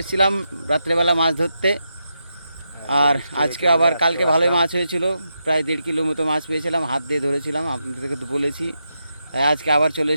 এসেছিলাম রাত্রেবেলা মাছ ধরতে, আর আজকে আবার কালকে ভালোই মাছ হয়েছিল, প্রায় 1.5 কিলো মতো মাছ পেয়েছিলাম, হাত দিয়ে ধরেছিলাম, আপনাদেরকে তো বলেছি। তাই আজকে আবার চলে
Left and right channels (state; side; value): inverted; both; correlation -0.85